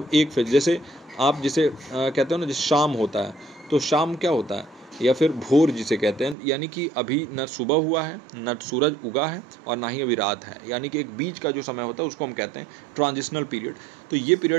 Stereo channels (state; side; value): drops out; left; at 6.4 s